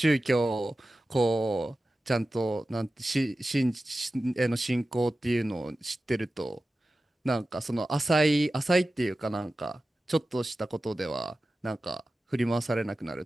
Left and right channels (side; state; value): both; normal; correlation 0.94